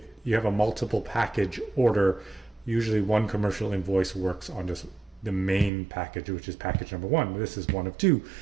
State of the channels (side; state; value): left; drops out; at 5.7 s